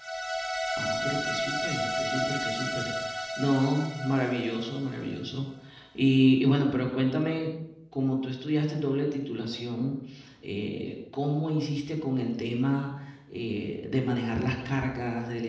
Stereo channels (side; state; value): both; identical; correlation 1.00